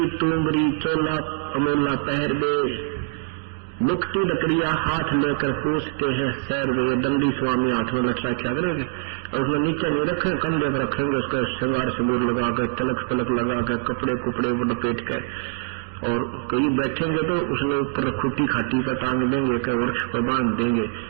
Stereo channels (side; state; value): left; silent; digital silence